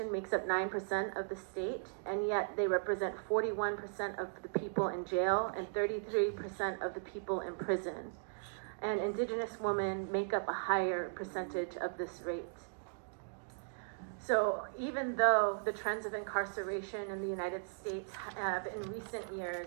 makes up 9% of the state, and yet they represent 41% of the people in jail and 33% of the people in prison. And Indigenous women make up a higher percentage of this rate. So even though the trends of incarceration in the United States have in recent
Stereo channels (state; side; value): silent; left; digital silence